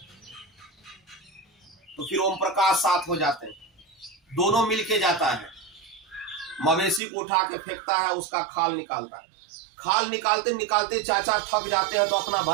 तो फिर ओम प्रकाश साथ हो जाते हैं, दोनों मिलके जाता है, मवेशी को उठा के फेंकता है, उसका खाल निकालता है। खाल निकालते निकालते चाचा थक जाते हैं तो अपना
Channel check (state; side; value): drops out; left; at 7.0 s